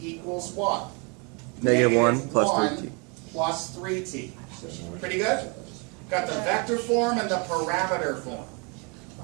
what? -1 plus 1 3t. plus 3t. Pretty good? Got the vector form and the parameter form.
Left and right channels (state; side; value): quieter; left; 32.6 dB